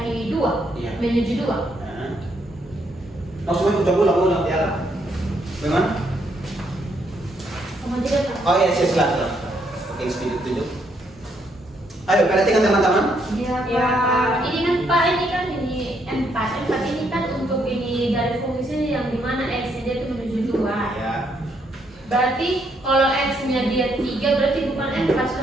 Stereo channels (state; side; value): normal; both; correlation 0.73